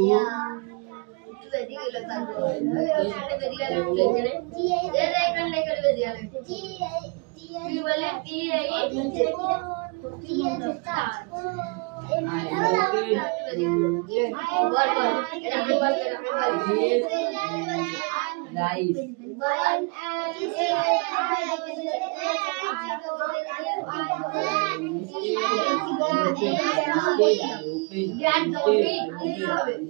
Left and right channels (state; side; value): quieter; left; 33.1 dB